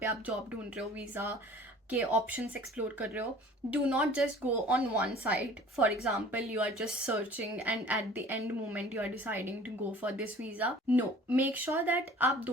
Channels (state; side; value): normal; both; correlation 0.47